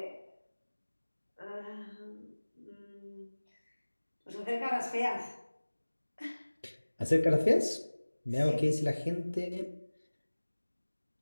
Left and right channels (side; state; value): both; inverted; correlation -1.00